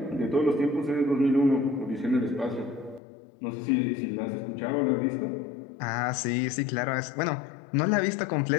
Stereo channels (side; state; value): right; drops out; at 3.0 s